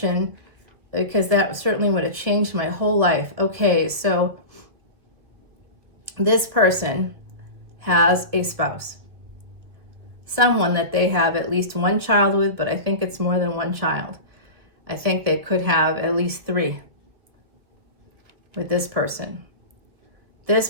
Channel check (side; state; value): left; late; 1.7 ms